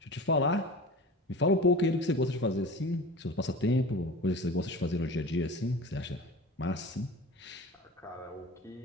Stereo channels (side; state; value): both; normal; correlation 0.35